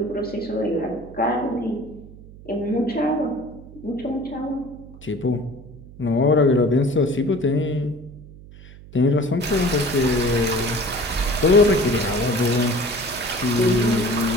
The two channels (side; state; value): right; noise; hum, 19 dB below the sound